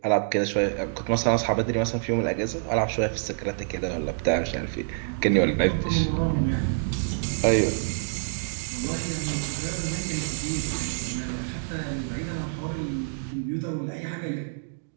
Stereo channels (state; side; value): silent; left; digital silence